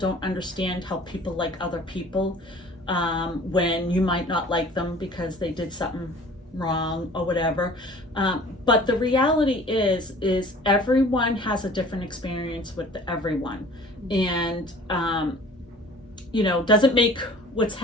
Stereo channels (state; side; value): normal; both; correlation 0.47